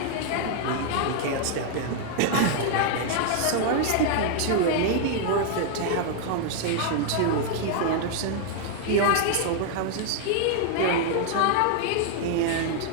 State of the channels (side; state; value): both; different; correlation 0.00